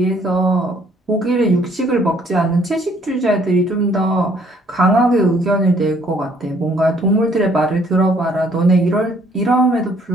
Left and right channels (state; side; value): normal; both; correlation 0.63